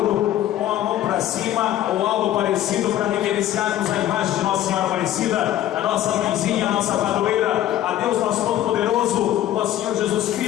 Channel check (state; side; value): quieter; right; 12.6 dB